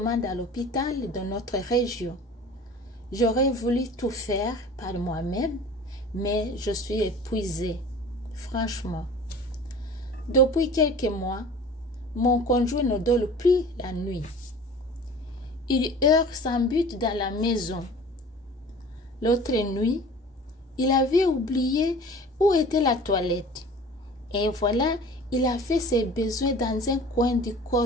à l'hôpital de notre région. J'aurais voulu tout faire par moi-même, mais je suis épuisée, franchement. Depuis quelques mois, mon conjoint ne dort plus la nuit. Il erre sans but dans la maison. L'autre nuit, il avait oublié où était la toilette. Et voilà, il a fait ses besoins dans un coin du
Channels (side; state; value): both; normal; correlation 0.42